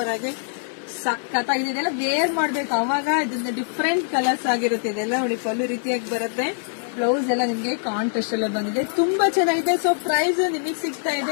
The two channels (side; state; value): right; silent; digital silence